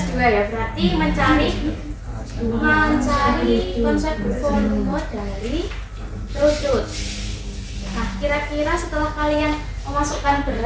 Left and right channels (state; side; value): identical; both; correlation 1.00